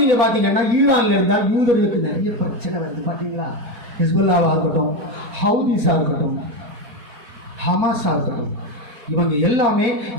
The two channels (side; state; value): left; late; 4.1 ms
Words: நீங்க பாத்தீங்கன்னா ஈரான்ல இருந்தால் யூதர்களுக்கு நிறைய பிரச்சனை வருது. பாத்தீங்களா, ஹிஸ்புல்லாவா இருக்கட்டும், ஹவுதிஸா இருக்கட்டும், ஹமாஸா இருக்கட்டும், இவங்க எல்லாமே